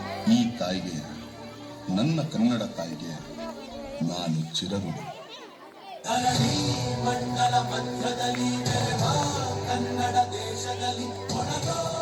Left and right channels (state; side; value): identical; both; correlation 1.00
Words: ಈ ತಾಯಿಗೆ, ನನ್ನ ಕನ್ನಡ ತಾಯಿಗೆ ನಾನು ಚಿರಋಣಿ. ಮಂಡಲ ಮಧ್ಯದಲ್ಲಿ ಕನ್ನಡ ದೇಶದಲ್ಲಿ